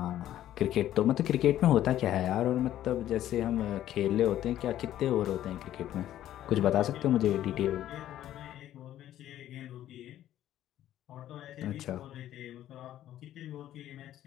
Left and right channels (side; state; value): right; quieter; 12.5 dB